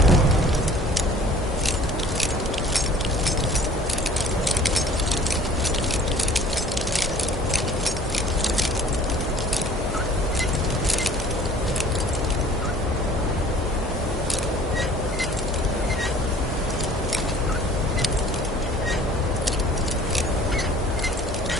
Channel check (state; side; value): normal; both; correlation 0.50